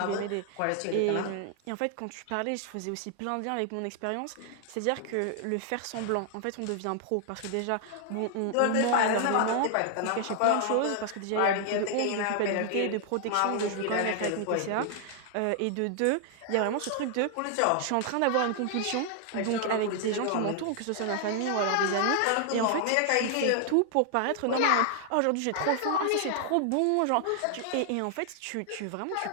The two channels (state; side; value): different; both; correlation 0.00